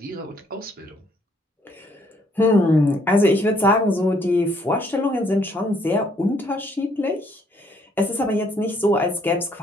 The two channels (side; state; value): both; normal; correlation 0.67